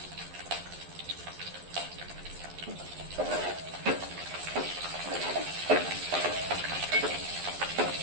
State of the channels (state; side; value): late; left; 11 ms